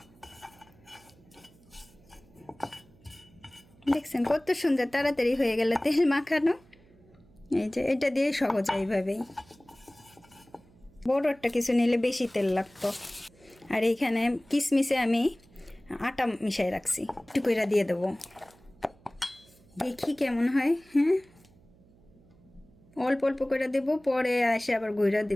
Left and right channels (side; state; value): right; noise; hum, 28 dB below the sound